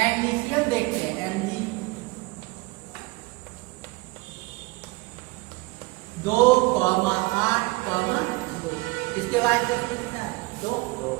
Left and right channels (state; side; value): quieter; left; 23.1 dB